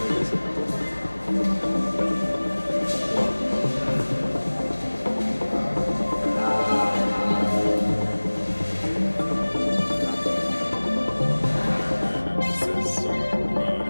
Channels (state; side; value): inverted; both; correlation -1.00